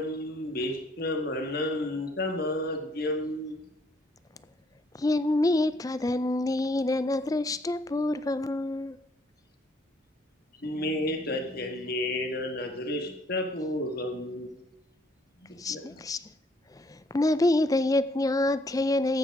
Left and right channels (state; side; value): normal; both; correlation 0.66